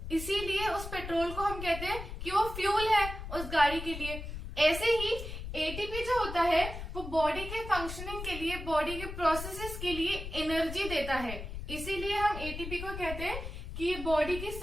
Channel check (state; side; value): noise; left; rumble, 8 dB below the sound